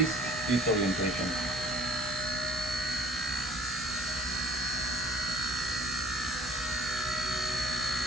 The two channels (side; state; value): both; normal; correlation 0.53